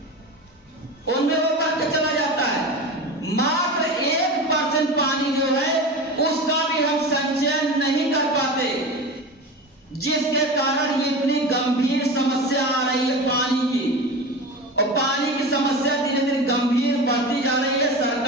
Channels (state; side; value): normal; both; correlation 0.28